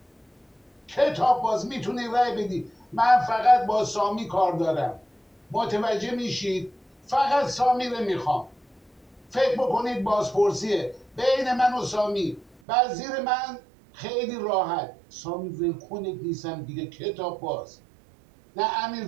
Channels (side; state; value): left; drops out; at 12.6 s